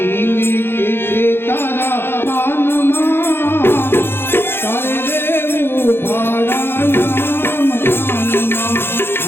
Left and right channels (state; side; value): late; right; 0.11 ms